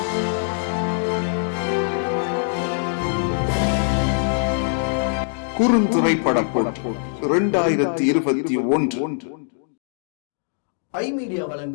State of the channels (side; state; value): right; silent; 64 dB below the other